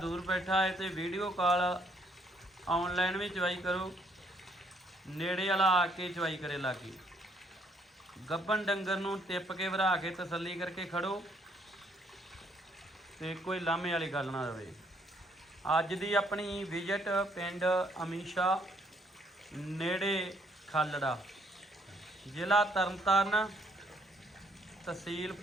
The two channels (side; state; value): both; normal; correlation 0.69